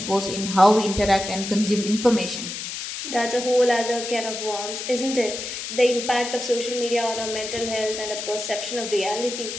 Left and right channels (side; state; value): left; noise; hiss, 7 dB below the sound